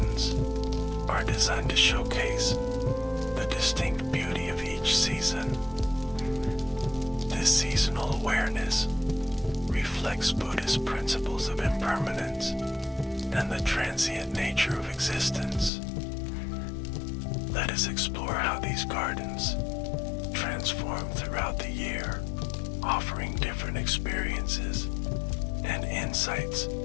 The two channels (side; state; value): right; drops out; at 15.7 s